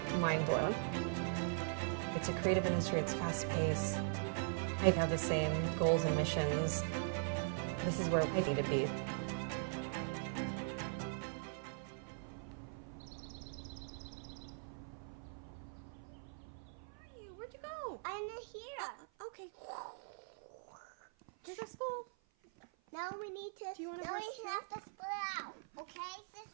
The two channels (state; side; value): silent; left; 50 dB below the other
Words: mind blown. It's a creative industry, it's fast paced. I have the same goals and missions. This is where I need to be. Where'd you go? I'm here. Okay. Is that school? Now we need to. Do you want to now we rest have to split out. Okay,